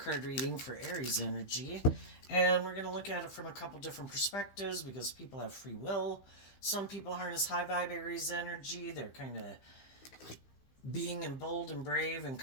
card reading for Aries energy, and we're going to look at it from a couple different perspectives because people have free will. Some people harness high vibe Aries energy. They're kind of being in bold and brave and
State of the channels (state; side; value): late; right; 15 ms